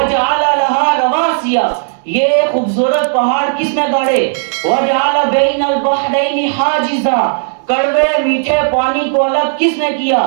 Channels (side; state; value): left; silent; digital silence